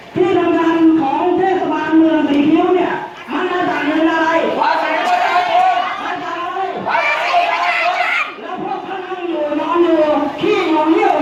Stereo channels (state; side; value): identical; both; correlation 1.00